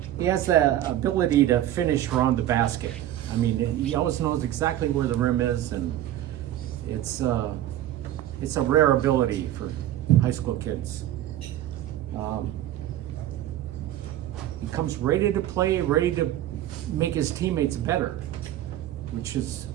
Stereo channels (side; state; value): left; quieter; 12.8 dB